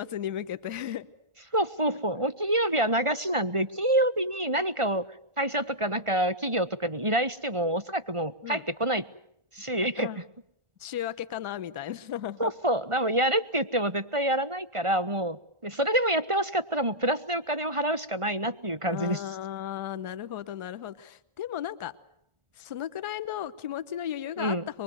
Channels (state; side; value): late; left; 1.4 ms